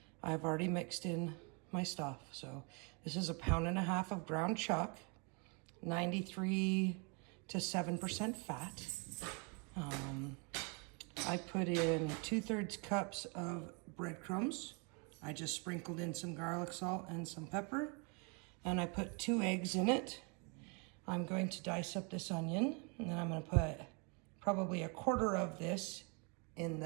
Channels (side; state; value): left; quieter; 33.9 dB